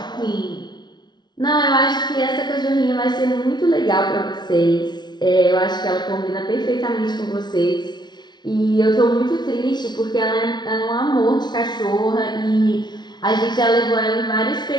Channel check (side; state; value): right; late; 0.20 ms